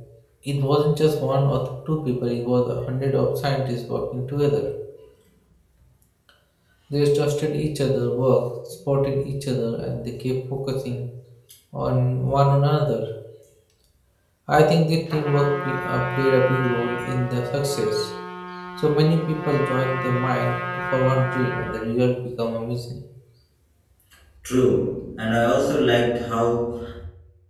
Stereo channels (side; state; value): both; identical; correlation 1.00